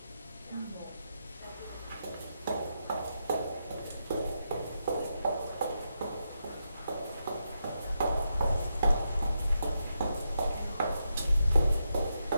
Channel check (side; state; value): both; inverted; correlation -0.84